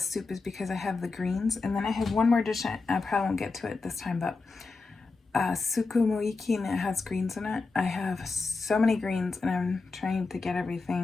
is because I have the greens. And then I have one more dish. I probably won't get to it this time, but sukumoiki, and it has greens in it. I have so many greens, and I'm trying to get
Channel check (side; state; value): right; quieter; 4.0 dB